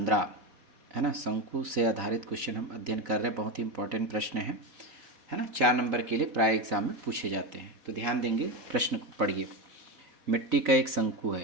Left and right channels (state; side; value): late; left; 4.0 ms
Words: है ना, शंकु से आधारित क्वेश्चन हम अध्ययन कर रहे हैं। बहुत ही इंपॉर्टेंट प्रश्न है ना, 4 नंबर के लिए प्राय एग्जाम में पूछे जाते हैं। तो ध्यान देंगे, प्रश्न को पढ़िए। मिट्टी का एक शंकु